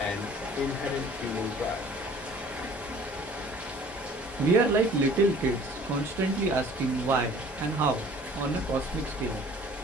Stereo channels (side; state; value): both; normal; correlation 0.51